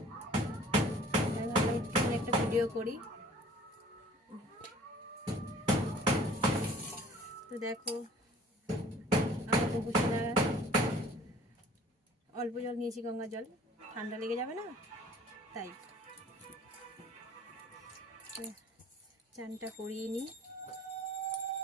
তাই ভাবলাম একটু একটা ভিডিও করি। তো দেখো, আমার গোপু সোনা অল্প জল নিয়েছি, গঙ্গা জল, ঠান্ডা লেগে যাবে না, তাই চানটা করিয়ে নিই।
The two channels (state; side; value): normal; both; correlation 0.51